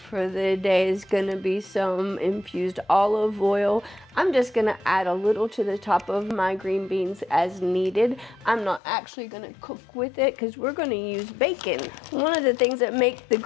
the day is gonna be some infused olive oil. I'm just gonna add a little to the top of my green beans as needed. I'm not actually gonna cook with it because we're gonna use bacon. One of the things that make the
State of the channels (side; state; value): right; drops out; at 8.8 s